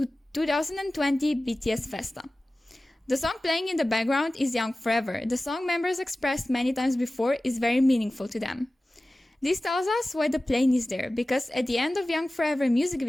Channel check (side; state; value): both; normal; correlation 0.96